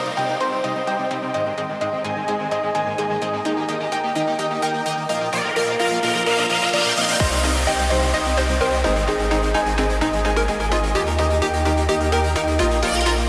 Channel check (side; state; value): both; identical; correlation 1.00